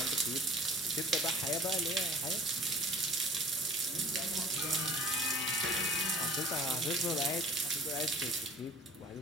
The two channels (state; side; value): normal; both; correlation 0.47